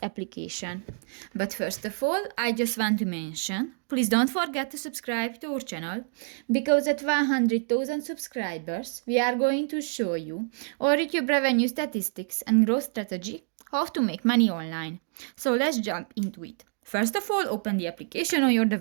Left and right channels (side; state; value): left; silent; digital silence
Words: application. But first of all, I just want to mention, please don't forget to subscribe to our channel, because at 100,000 subscribers we are going to show you our YouTube revenue statistics and growth strategy, how to make money online. So let's jump into it. First of all, open the application on your